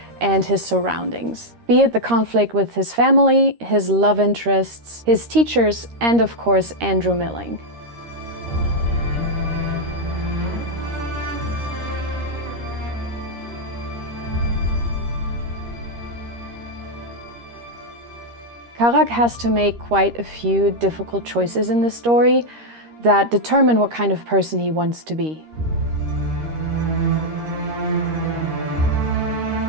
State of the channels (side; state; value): left; late; 13 ms